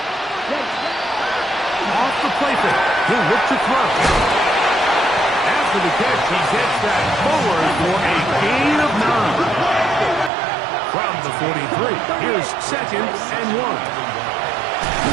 Off the play fake. He'll look to throw. After the catch, he gets that forward for a gain of 9. From the 43, here's 2nd and 1.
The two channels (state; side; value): drops out; left; at 10.3 s